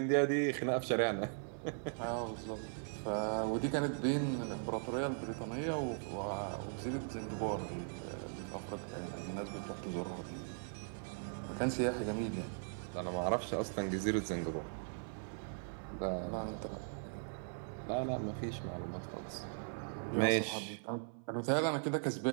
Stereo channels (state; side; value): silent; left; 52 dB below the other